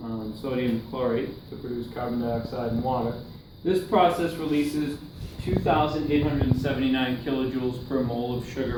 the sodium chlorate to produce carbon dioxide and water. This process releases 2,879 kilojoules per mole of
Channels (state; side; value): identical; both; correlation 1.00